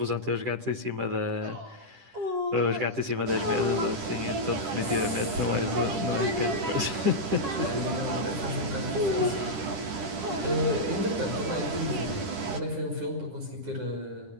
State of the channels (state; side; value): late; left; 10 ms